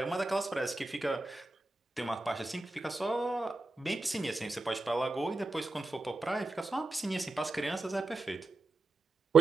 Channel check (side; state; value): left; quieter; 3.3 dB